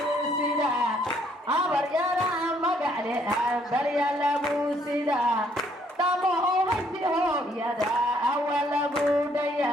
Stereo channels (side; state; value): both; normal; correlation 0.67